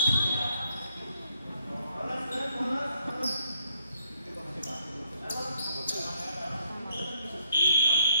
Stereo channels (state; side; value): inverted; both; correlation -0.69